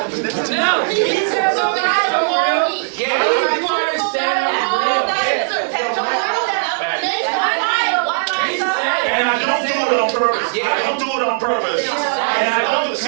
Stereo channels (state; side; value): silent; left; digital silence